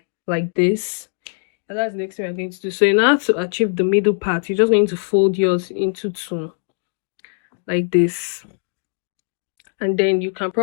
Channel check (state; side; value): silent; right; 62 dB below the other